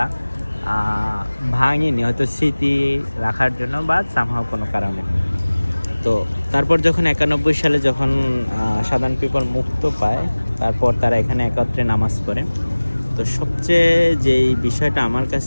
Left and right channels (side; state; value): both; inverted; correlation -1.00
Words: ভাঙেনি, হয়তো স্মৃতি রাখার জন্য বা সামহাও কোনো কারণে। তো তারপর যখন 91 সালে যখন সাধারণ পিপল মুক্ত পায়, তারপর তারা এখানে একত্রে নামাজ পড়ে। তো সবচেয়ে যেই বিষয়টা আমার